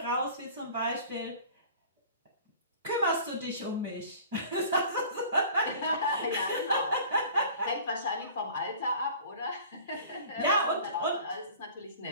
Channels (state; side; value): inverted; both; correlation -0.45